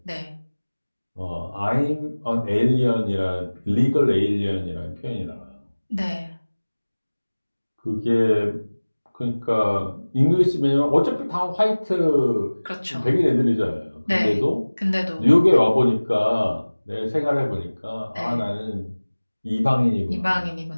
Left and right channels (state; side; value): inverted; both; correlation -1.00